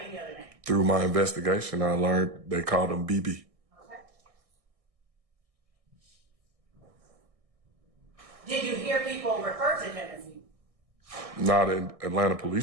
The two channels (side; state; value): left; late; 1.6 ms